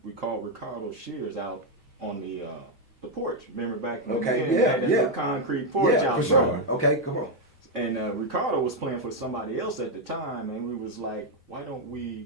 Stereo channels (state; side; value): normal; both; correlation 0.02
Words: we called Ricardo Shears out on the porch. Remember back in the day, that concrete porch out for sure. Okay, come on. And Ricardo was playing for somebody else at the time, and we was like, why don't